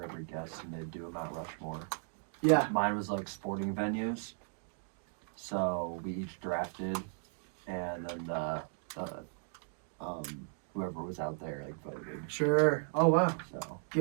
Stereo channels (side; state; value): left; silent; 54 dB below the other